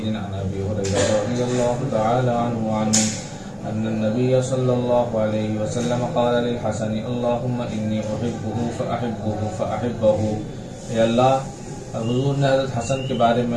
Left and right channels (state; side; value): identical; both; correlation 1.00